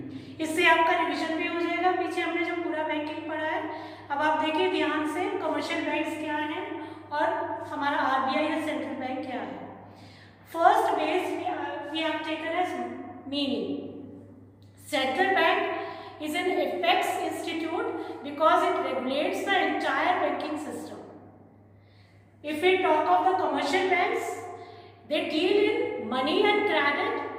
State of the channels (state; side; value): identical; both; correlation 1.00